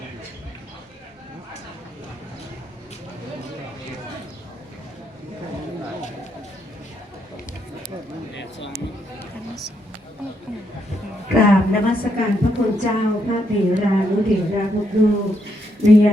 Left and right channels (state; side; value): normal; both; correlation 0.77